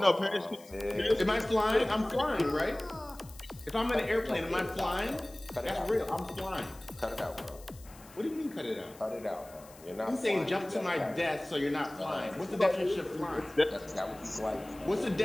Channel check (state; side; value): noise; left; hiss, 22 dB below the sound